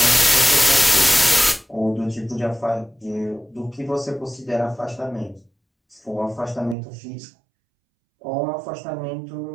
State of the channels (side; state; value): left; drops out; at 6.8 s